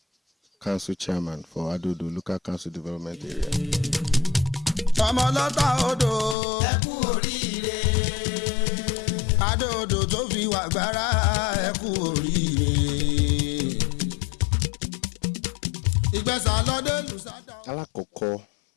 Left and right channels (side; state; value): right; drops out; at 6.4 s